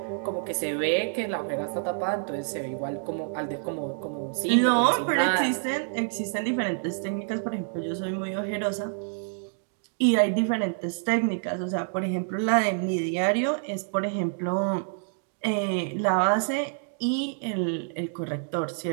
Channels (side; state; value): left; silent; digital silence